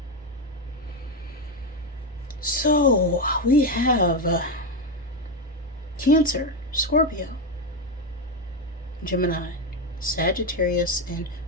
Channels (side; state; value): both; normal; correlation 0.09